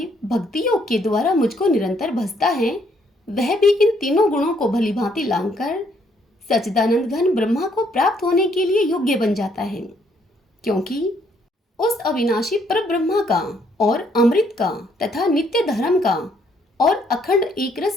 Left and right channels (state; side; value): normal; both; correlation 0.69